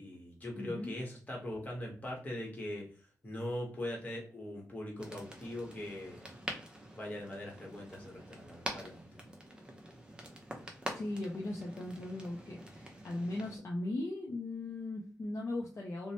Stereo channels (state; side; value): normal; both; correlation 0.85